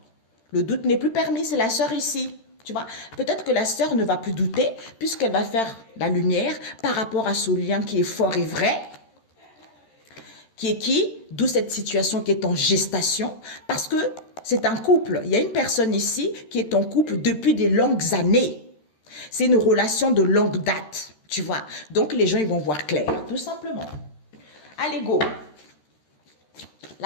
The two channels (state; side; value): late; right; 13 ms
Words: Le doute n'est plus permis, c'est la sœur ici. Tu vois, peut-être que la sœur ne va plus douter puisqu'elle va faire la lumière par rapport à ce lien qui est fort et vrai. Qui est qui? D'où cette situation qui est en gestation. Parce que c'est un couple. Il y a une personne ici qui est en couple depuis des longues années. C'est une relation de longue date. Tu vois. Donc les gens ils vont voir clair. Tout simplement. Allez, go.